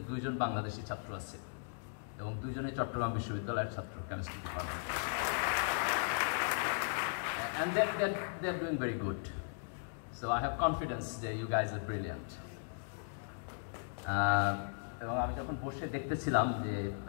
2 জন বাংলাদেশি ছাত্র আছে এবং 2 জনই চট্টগ্রাম বিশ্ববিদ্যালয়ের ছাত্র, chemistry department. And they're doing very good. So I have confidence that you guys are brilliant. এবং আমি যখন বসে দেখতেছিলাম যে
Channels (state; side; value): silent; right; digital silence